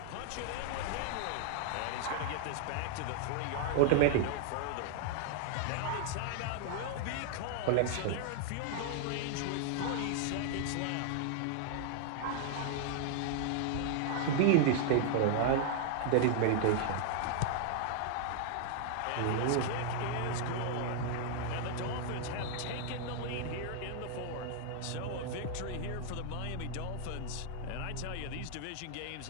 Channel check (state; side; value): different; both; correlation 0.00